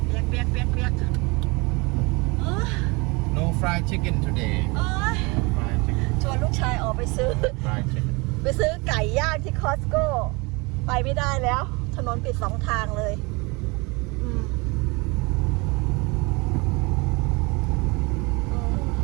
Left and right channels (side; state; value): left; quieter; 27.1 dB